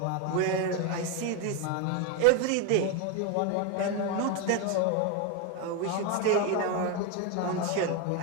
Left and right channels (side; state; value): both; different; correlation 0.02